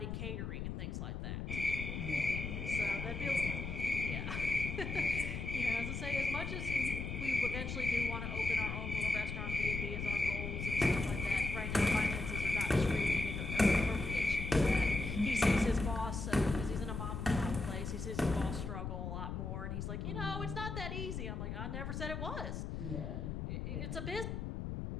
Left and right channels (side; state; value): left; noise; rumble, 4 dB below the sound